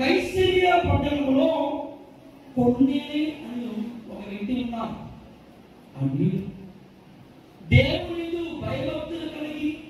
పట్టణంలో కొర్నేలి అని ఒక వ్యక్తి ఉన్నారు. అని దేవుని భయభక్తులు కలిగి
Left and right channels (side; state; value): both; identical; correlation 1.00